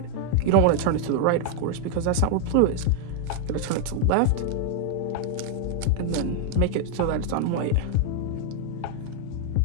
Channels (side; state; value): both; different; correlation 0.00